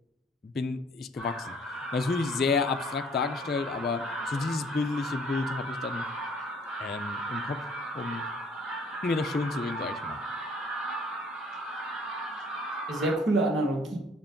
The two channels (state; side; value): normal; both; correlation 0.57